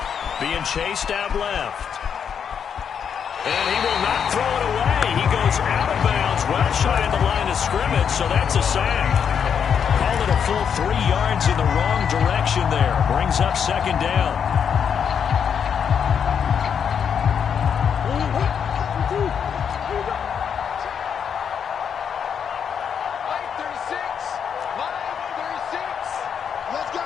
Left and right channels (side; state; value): right; quieter; 7.5 dB